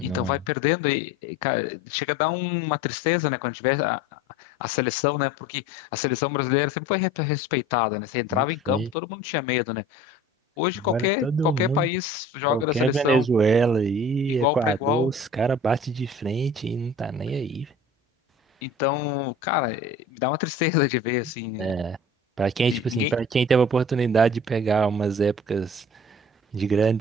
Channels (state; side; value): normal; both; correlation 0.43